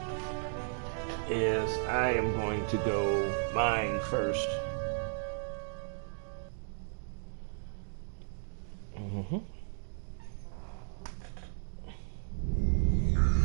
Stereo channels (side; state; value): left; silent; digital silence